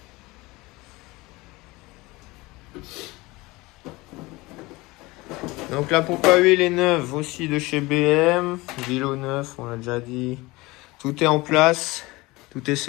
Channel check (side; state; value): right; quieter; 21.9 dB